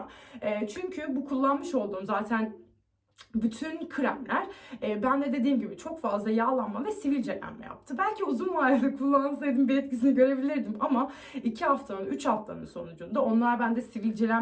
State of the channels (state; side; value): identical; both; correlation 1.00